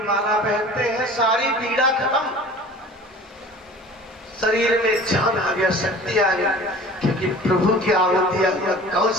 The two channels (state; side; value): normal; both; correlation 0.43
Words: माला पहनते हैं, सारी पीड़ा खत्म, शरीर में जान आ गया, शक्ति आ गई, क्योंकि प्रभु की आहुति हुआ